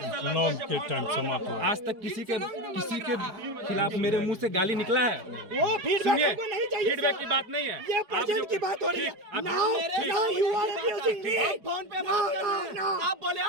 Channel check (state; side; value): late; left; 4.8 ms